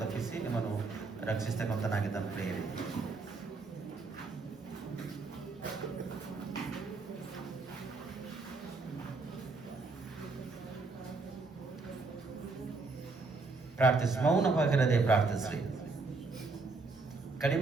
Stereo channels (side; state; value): left; quieter; 3.9 dB